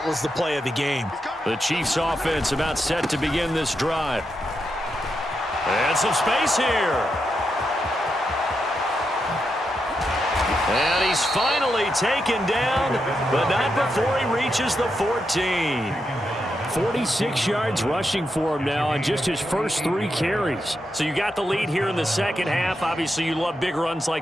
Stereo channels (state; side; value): normal; both; correlation 0.85